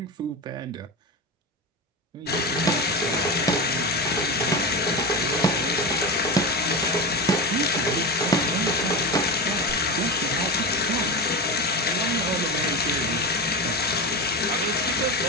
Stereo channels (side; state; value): both; normal; correlation 0.21